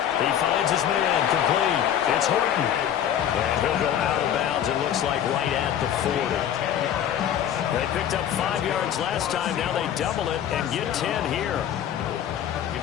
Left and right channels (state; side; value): quieter; right; 10.0 dB